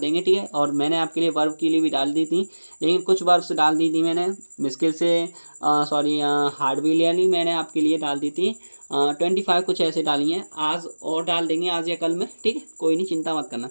ठीक है। और मैंने आपके लिए वर्ब के लिए भी डाल दी थी, लेकिन कुछ वर्ब्स डाल दी थी मैंने मुश्किल से, सॉरी हार्डवेलियरली मैंने आपके लिए डाल दी थी 25 कुछ ऐसे डाली हैं। आज और डाल देंगे, आज या कल में, ठीक है, कोई नहीं, चिंता मत करना।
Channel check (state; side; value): inverted; both; correlation -1.00